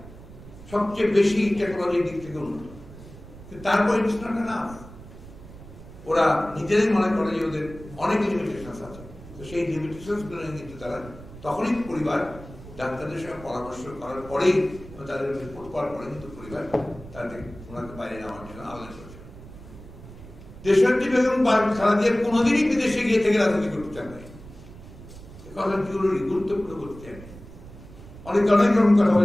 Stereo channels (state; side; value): noise; right; rumble, 17 dB below the sound